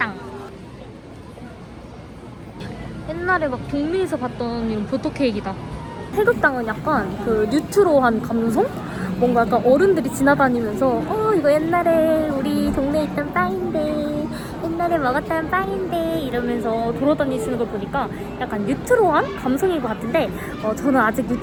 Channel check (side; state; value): both; identical; correlation 1.00